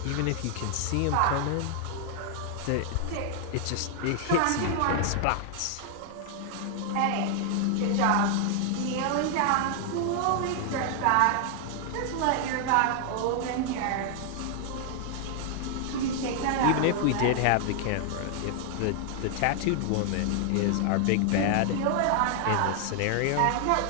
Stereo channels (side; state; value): both; different; correlation 0.00